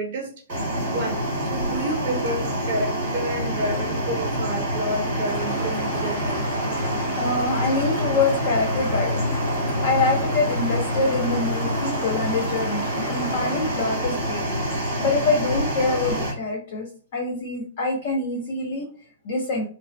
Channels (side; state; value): both; inverted; correlation -0.40